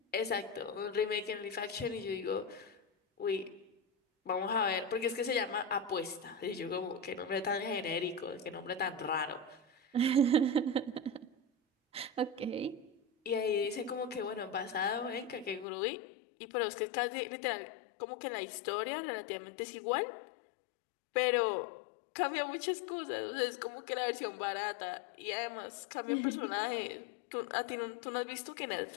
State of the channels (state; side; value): drops out; right; at 15.7 s